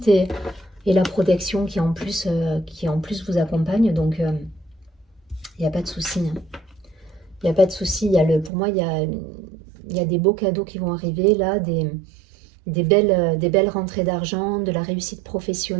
et la protection qui en plus vous accompagne. Donc il n'y a pas de souci. Hein. Il n'y a pas de souci. Pour moi, il y a des beaux cadeaux qui vont arriver là, des belles rentrées d'argent, de la réussite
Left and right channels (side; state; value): left; drops out; at 8.5 s